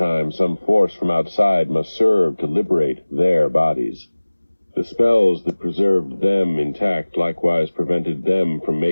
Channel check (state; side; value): inverted; both; correlation -1.00